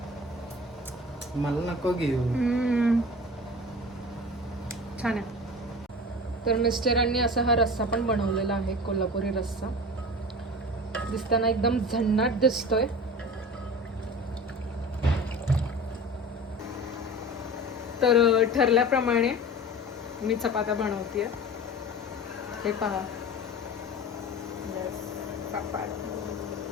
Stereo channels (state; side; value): normal; both; correlation 0.35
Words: मला नको घेऊ. छान आहे. तर मिस्टरांनी असा हा रस्सा पण बनवलेला आहे, कोल्हापुरी रस्सा. दिसताना एकदम झन्नाट दिसतोय. तर ठरल्याप्रमाणे मी चपात्या बनवतेय. हे पहा,